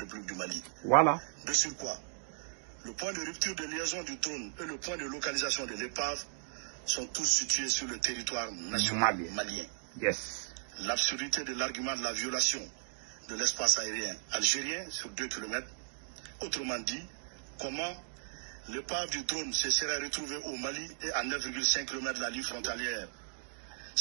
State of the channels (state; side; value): silent; left; digital silence